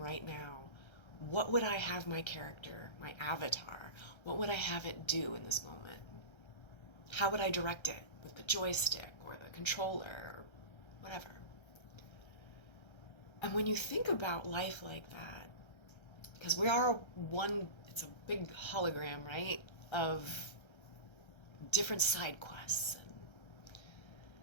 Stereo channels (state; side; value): late; right; 1.3 ms